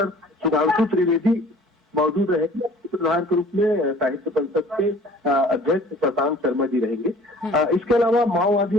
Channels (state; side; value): normal; both; correlation 0.50